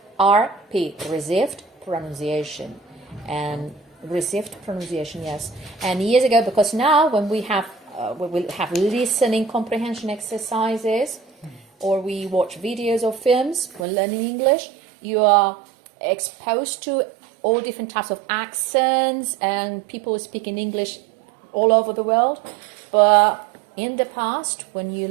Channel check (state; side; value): drops out; left; at 13.9 s